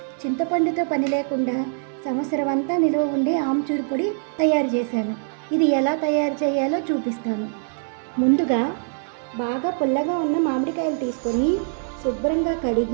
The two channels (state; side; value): silent; left; digital silence